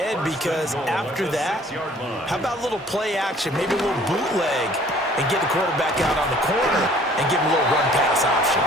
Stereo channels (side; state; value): both; normal; correlation 0.55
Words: because after that, how about a little play action, maybe a little bootleg, and get the quarterback out on the corner and give him a little run-pass option.